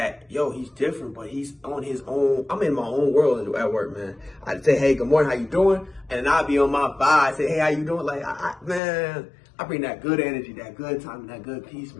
yo, he's different, but he's on his own. I'm in my own world at work, man. I'd say, hey, good morning, how you doing? And then I'd be on my vibe, say, hey, how you doing? Like, man, I bring that good energy, that good time, and that good peace,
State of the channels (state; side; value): drops out; right; at 8.8 s